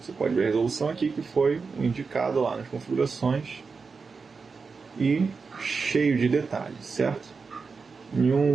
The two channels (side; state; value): left; quieter; 4.8 dB